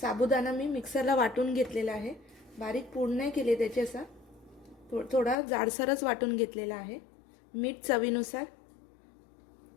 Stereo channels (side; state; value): right; drops out; at 5.4 s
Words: मी मिक्सरला वाटून घेतलेला आहे। बारीक पूड नाही केले त्याचे, असा थोडा जाडसरच वाटून घेतलेला आहे। मीठ चवीनुसार।